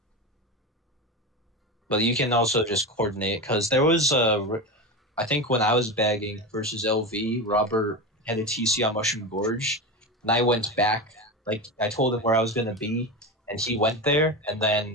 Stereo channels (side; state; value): both; normal; correlation 0.21